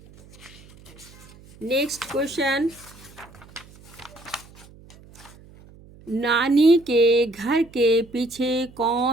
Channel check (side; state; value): right; noise; hum, 23 dB below the sound